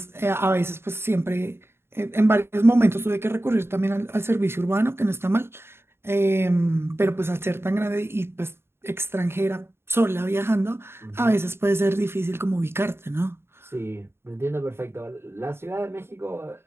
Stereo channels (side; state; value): left; late; 0.12 ms